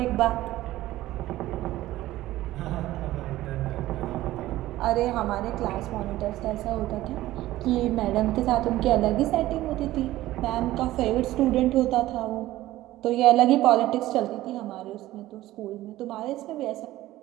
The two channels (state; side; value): quieter; left; 15.8 dB